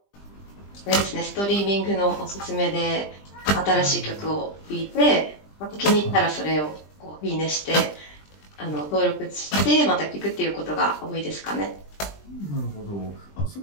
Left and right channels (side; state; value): right; late; 20 ms